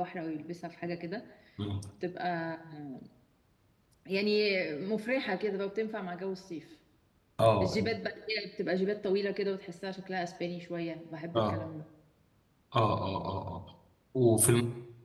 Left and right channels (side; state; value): both; identical; correlation 1.00